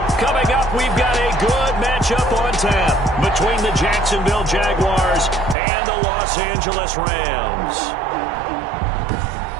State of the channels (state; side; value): drops out; left; at 5.6 s